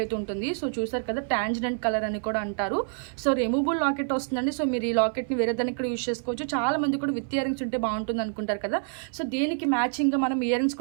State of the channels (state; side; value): silent; left; 57 dB below the other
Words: అయితే ఉంటుంది. సో చూసారు కదా, టాంజెంట్ కలర్ అని కూడా అంటారు. సో రిమూవబుల్ లాకెట్ వస్తుందండి. సో మీరు ఈ లాకెట్ని వేరే దానికి కూడా యూజ్ చేసుకోవచ్చు. చాలా మంది కూడా విత్ ఇయర్ రింగ్స్ ఉంటే బాగుంటుంది అనుకుంటారు కదా. సో దీనికి మ్యాచింగ్గా మనం ఇయర్ రింగ్స్